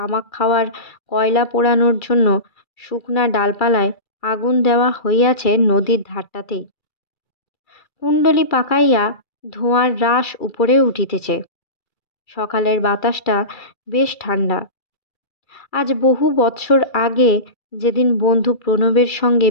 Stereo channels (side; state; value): right; late; 2.3 ms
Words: খাওয়ার কয়লা পোড়ানোর জন্য শুকনা ডালপালায় আগুন দেওয়া হইয়াছে নদীর ধারটাতেই। কুণ্ডলি পাকাইয়া ধোঁয়ার রাশ উপরে উঠিতেছে। সকালের বাতাসটা বেশ ঠান্ডা। আজ বহু বৎসর আগে যেদিন বন্ধু প্রণবের সঙ্গে